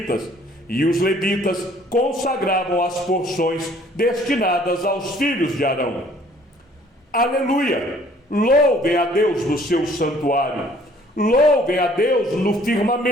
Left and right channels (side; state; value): both; normal; correlation 0.57